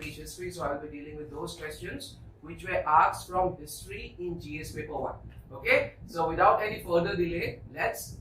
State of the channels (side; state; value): both; identical; correlation 1.00